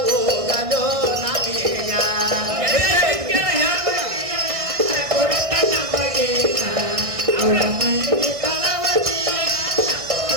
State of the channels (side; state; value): left; late; 1.6 ms